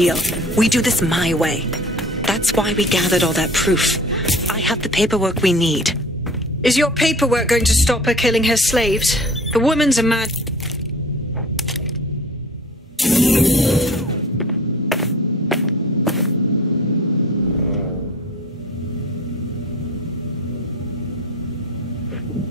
We do this my way. That's why we gathered all that proof. I have the paperwork we need. Is your paperwork going to stop her killing her slaves? The woman's a mad...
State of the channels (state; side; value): normal; both; correlation 0.44